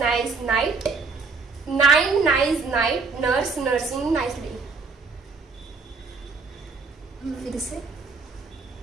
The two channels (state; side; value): quieter; left; 4.4 dB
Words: night, nine nice night, nurse nursing nicely. फिर से